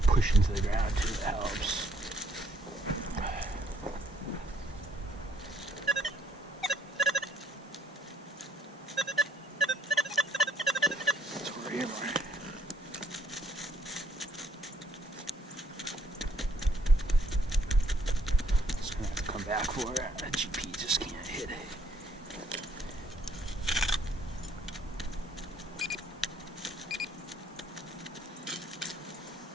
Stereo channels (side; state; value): both; normal; correlation 0.65